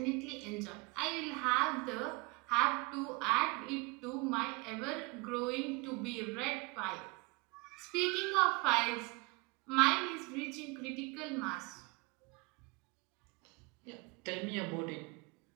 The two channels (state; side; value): quieter; left; 27.7 dB